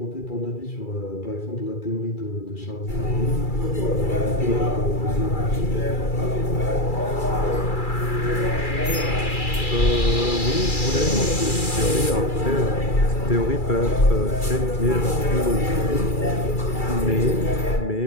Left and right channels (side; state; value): right; late; 2.3 ms